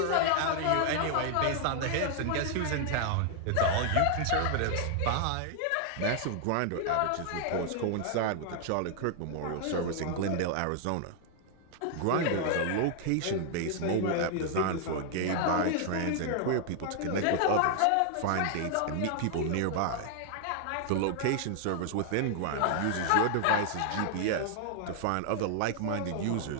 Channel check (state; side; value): different; both; correlation 0.00